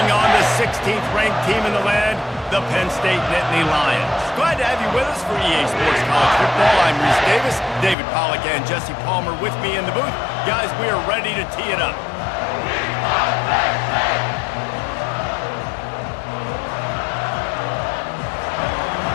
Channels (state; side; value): drops out; right; at 8.0 s